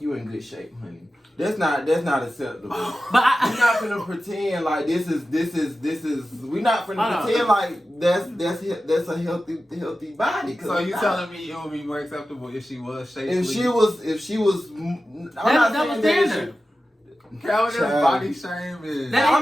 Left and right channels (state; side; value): normal; both; correlation 0.94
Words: you in good shape, honey. That's not acceptable. But we're not gonna pretend like this is. We're not gonna pretend like that's a healthy body. So you telling me it would be more acceptable if she was shapely? If she was. I'm not saying that. Calvin is body shaming.